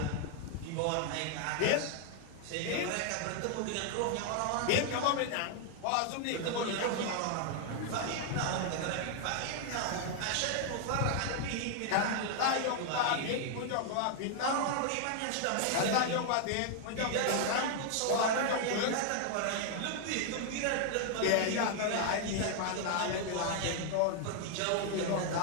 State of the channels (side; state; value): both; different; correlation 0.00